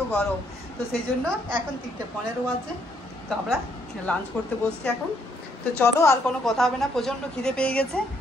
গরম। তো সেই জন্য এখন 3:15 আছে, তো আমরা লাঞ্চ করতে বসছি এখন। তো চলো আর কোনো কথা হবে না, প্রচণ্ড খিদে পেয়ে গেছে,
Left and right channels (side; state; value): both; normal; correlation 0.70